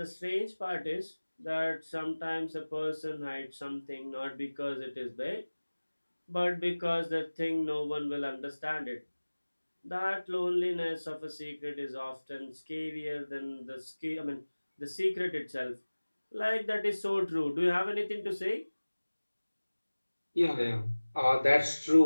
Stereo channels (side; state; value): both; inverted; correlation -1.00